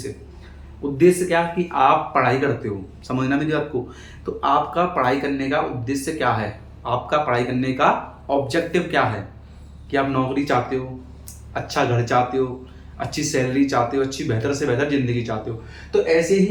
उद्देश्य क्या कि आप पढ़ाई करते हो, समझना मेरी बात को। तो आपका पढ़ाई करने का उद्देश्य क्या है? आपका पढ़ाई करने का ऑब्जेक्टिव क्या है? कि आप नौकरी चाहते हो, अच्छा घर चाहते हो, अच्छी सैलरी चाहते हो, अच्छी बेहतर से बेहतर जिंदगी चाहते हो। तो ऐसे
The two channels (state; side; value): identical; both; correlation 1.00